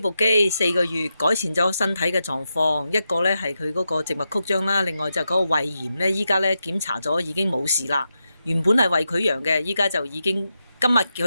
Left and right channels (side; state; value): both; inverted; correlation -0.87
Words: 機4個月，改善咗身體嘅狀況。一個咧係佢嗰個靜脈曲張啦，另外就嗰個胃炎咧，依家咧檢查咗已經冇事啦。原本係胃潰瘍嘅，依家就已經今日去